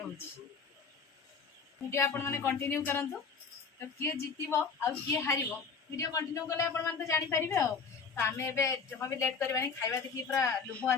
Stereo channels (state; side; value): quieter; right; 5.3 dB